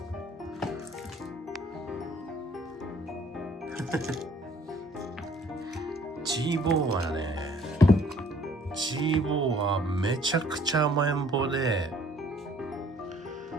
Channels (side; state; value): both; normal; correlation 0.58